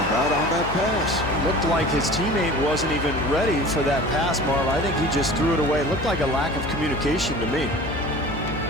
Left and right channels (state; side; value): noise; left; hum, 9 dB below the sound